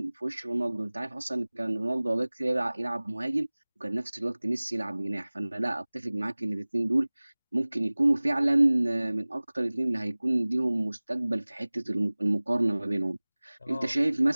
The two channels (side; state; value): both; inverted; correlation -1.00